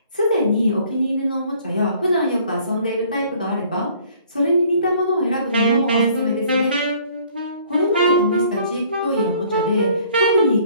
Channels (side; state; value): both; inverted; correlation -0.58